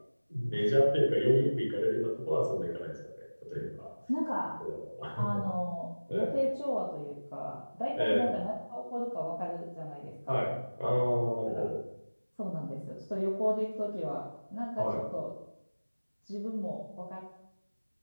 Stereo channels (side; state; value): both; inverted; correlation -1.00